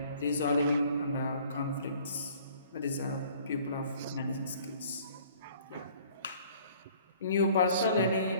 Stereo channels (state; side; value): inverted; both; correlation -0.54